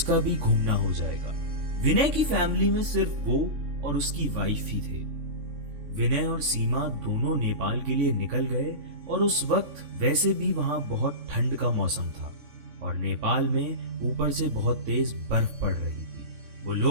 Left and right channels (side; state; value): left; late; 3.5 ms